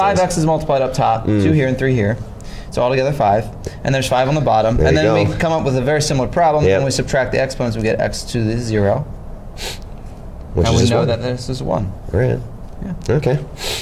sense. x's multiplied up top, 2 here and 3 here. So altogether 5, and there's 5 on the bottom, There and you then go. we come up with a very similar problem. Yep. When we subtract the exponents, we get x to the 0, Which and is we just know 1. that this is 1. Right. Yeah. Okay.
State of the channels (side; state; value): both; identical; correlation 1.00